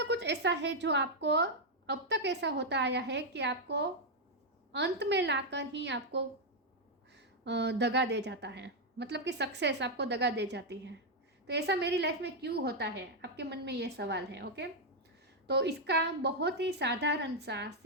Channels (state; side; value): normal; both; correlation -0.01